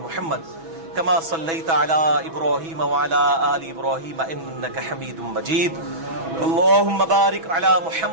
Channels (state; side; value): late; left; 6.1 ms